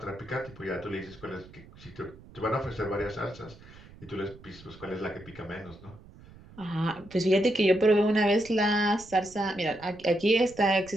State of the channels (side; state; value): right; noise; rumble, 21 dB below the sound